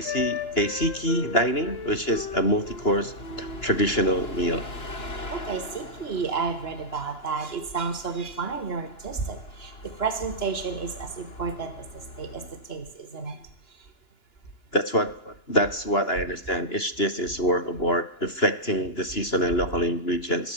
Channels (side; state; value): right; late; 2.9 ms